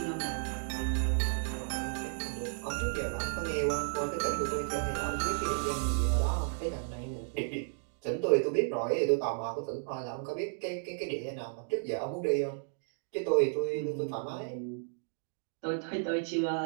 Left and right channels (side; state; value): left; silent; digital silence